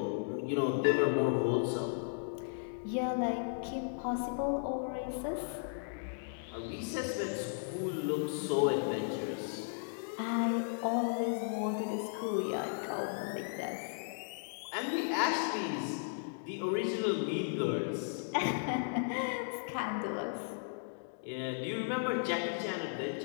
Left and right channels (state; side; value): silent; right; digital silence